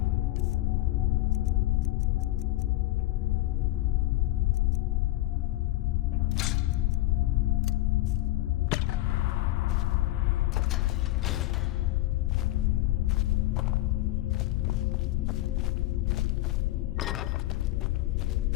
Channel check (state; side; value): quieter; right; 16.7 dB